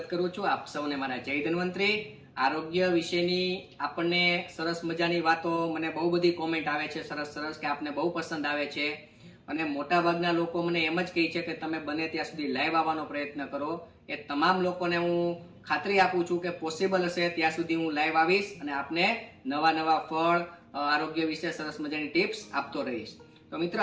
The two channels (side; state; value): both; identical; correlation 1.00